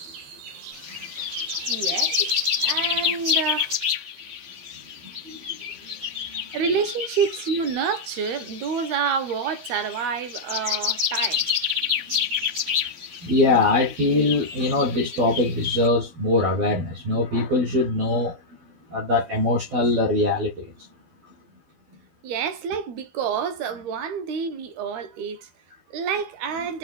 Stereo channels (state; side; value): late; left; 12 ms